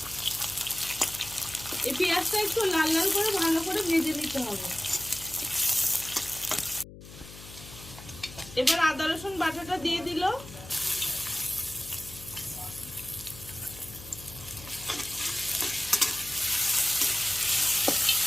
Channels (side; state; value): left; noise; hum, 16 dB below the sound